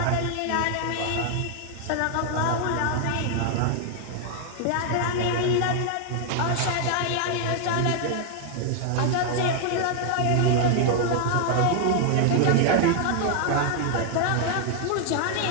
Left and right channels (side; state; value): both; different; correlation 0.00